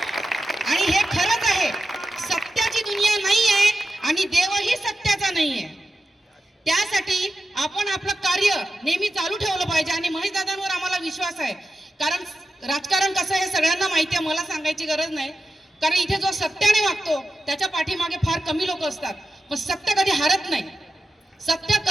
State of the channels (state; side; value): normal; both; correlation 0.90